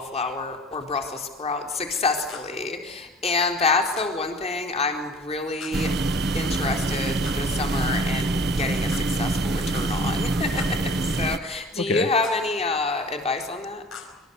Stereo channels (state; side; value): normal; both; correlation 0.45